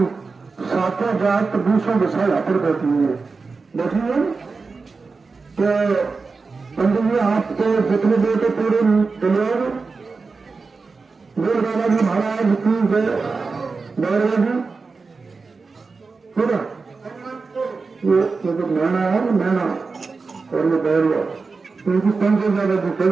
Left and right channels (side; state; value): left; quieter; 4.4 dB